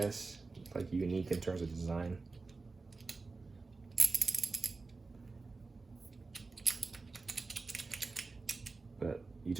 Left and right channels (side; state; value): left; quieter; 3.9 dB